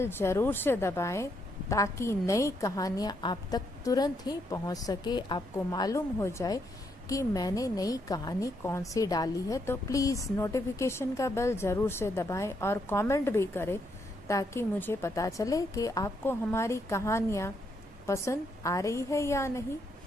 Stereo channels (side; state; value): both; normal; correlation 0.76